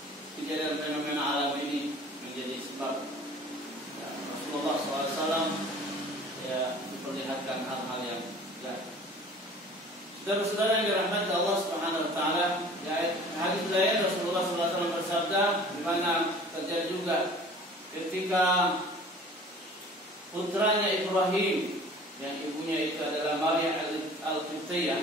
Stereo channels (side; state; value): both; normal; correlation 0.46